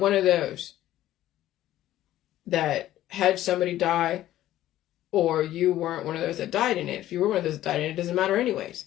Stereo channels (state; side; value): quieter; right; 13.8 dB